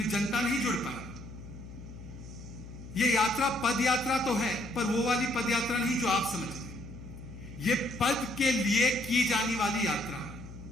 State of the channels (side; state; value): left; noise; hum, 14 dB below the sound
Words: जनता नहीं जुड़ पाई। यह यात्रा पद यात्रा तो है, पर वो वाली पद यात्रा नहीं जो आप समझ रहे। यह पद के लिए की जाने वाली यात्रा है।